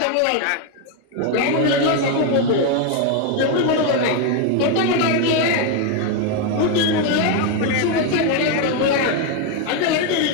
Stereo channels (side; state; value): both; different; correlation 0.01